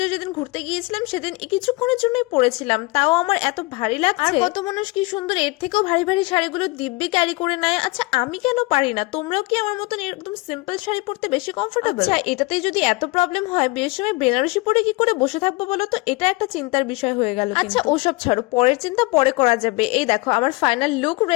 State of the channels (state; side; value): quieter; right; 23.7 dB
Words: যেদিন ঘুরতে গিয়েছিলাম সেদিন কিছুক্ষণের জন্যই পরেছিলাম, তাও আমার এত ভারী লাগছে। আর কত মানুষ কি সুন্দর এর থেকেও ভারী ভারী শাড়িগুলো দিব্যি ক্যারি করে নেয়। আচ্ছা, আমি কেন পারি না? তোমরাও কি আমার মতন একদম সিম্পল শাড়ি পরতে বেশি কমফোর্টেবল? আচ্ছা, এটাতেই যদি এত প্রবলেম হয়, বিয়ের সময় বেনারসি পরে কি করে বসে থাকবো বলো তো? এটা একটা চিন্তার বিষয় হয়ে গেল। আচ্ছা, ওসব ছাড়ো, পরের চিন্তা পরে করা যাবে। এই দেখো, আমার ফাইনাল লুক